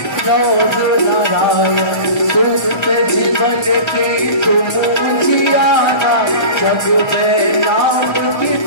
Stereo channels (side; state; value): right; late; 1.3 ms